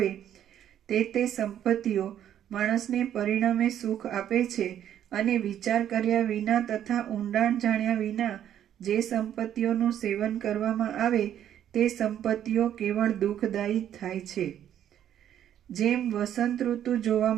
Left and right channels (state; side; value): quieter; left; 10.4 dB